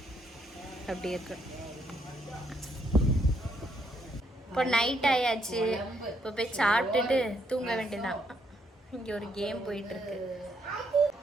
அப்படி இருக்கு. இப்போ நைட் ஆயாச்சு. இப்போ போய் சாப்பிட்டுட்டு தூங்க வேண்டியதான். இங்கே ஒரு கேம் போயிட்டு இருக்கு.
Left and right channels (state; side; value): normal; both; correlation 0.74